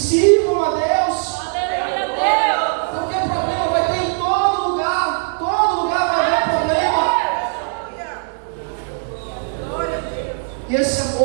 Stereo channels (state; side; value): silent; left; 59 dB below the other